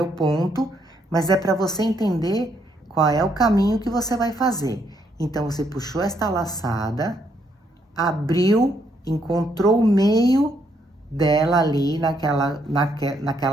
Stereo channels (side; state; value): both; normal; correlation 0.74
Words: ponto, mas é para você entender qual é o caminho que você vai fazer. Então, você puxou esta laçada, abriu, encontrou o meio dela ali,